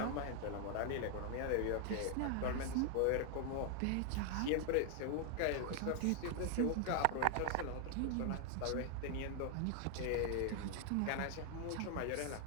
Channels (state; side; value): different; both; correlation 0.00